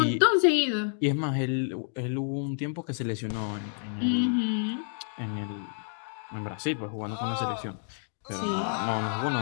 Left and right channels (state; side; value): silent; right; digital silence